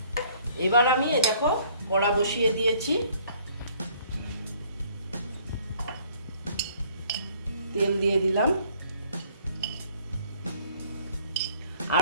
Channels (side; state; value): both; inverted; correlation -0.59